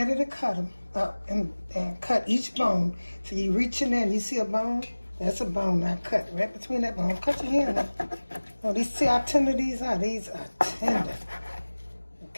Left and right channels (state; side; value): inverted; both; correlation -1.00